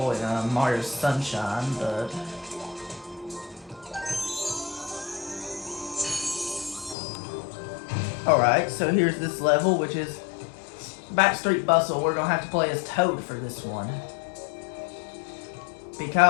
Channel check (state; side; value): drops out; right; at 7.0 s